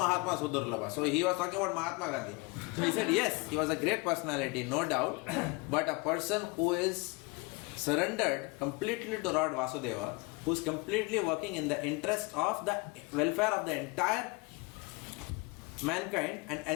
Su Durlabha. So he was talking about Mahatma Gandhi. So he said, yes, he was a great personality, no doubt, but a person who is surrendered completely to Lord Vasudeva, who is completely working in the interest of the welfare of the entire mankind and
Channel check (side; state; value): right; quieter; 27.0 dB